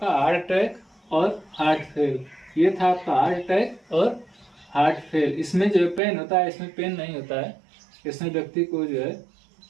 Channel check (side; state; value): left; drops out; at 6.0 s